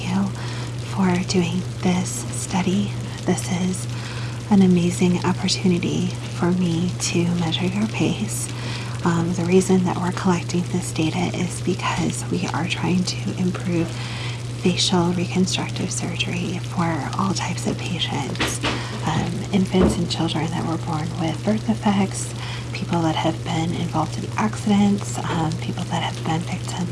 you for doing this study. This is an amazing opportunity for me to measure your pace. The reason that we're collecting this data is because we are trying to improve facial reconstructive surgery for all types of patients. Infants and children that were born with birth defects, people that have been involved in accidents, people that have been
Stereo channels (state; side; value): identical; both; correlation 1.00